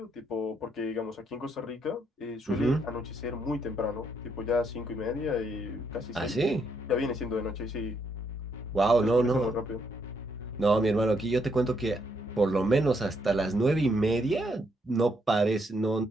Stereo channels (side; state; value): both; normal; correlation 0.74